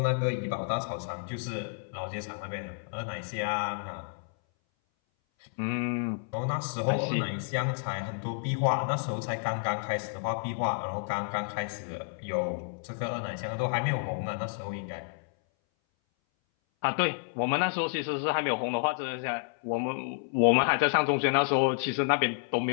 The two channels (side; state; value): right; silent; 58 dB below the other